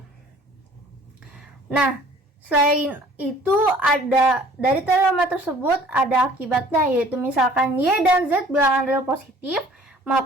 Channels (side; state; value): both; normal; correlation 0.53